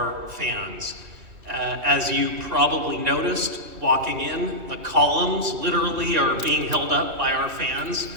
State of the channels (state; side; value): late; left; 2.8 ms